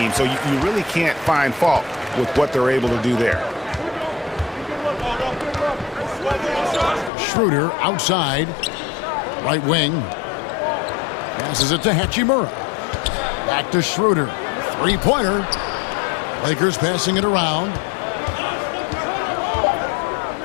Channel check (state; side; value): drops out; right; at 7.1 s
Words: So you really can't find fault with what they're able to do there. Schroeder outside. Right wing. Passes it to Hachimura. Back to Schroeder. Three-pointer. Lakers passing it around.